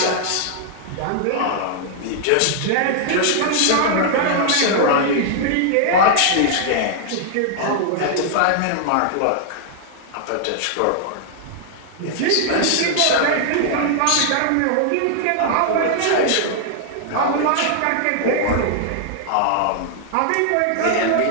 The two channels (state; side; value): different; both; correlation -0.01